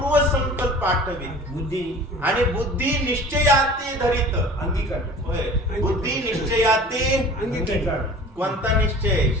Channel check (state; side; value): normal; both; correlation 0.43